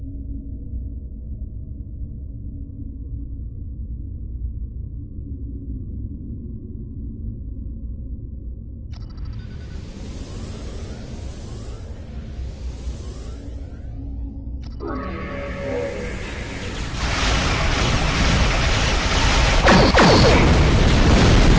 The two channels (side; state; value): both; identical; correlation 1.00